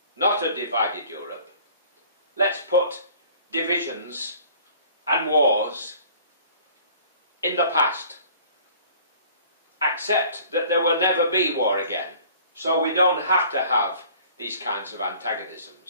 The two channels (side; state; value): both; inverted; correlation -0.51